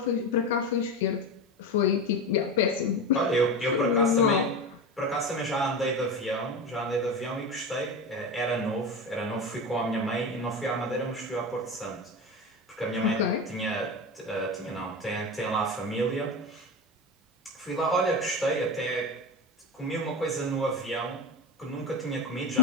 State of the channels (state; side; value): normal; both; correlation 0.23